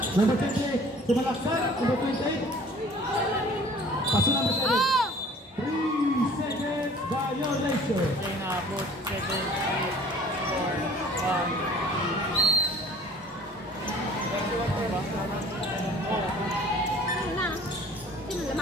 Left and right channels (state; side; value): normal; both; correlation 0.50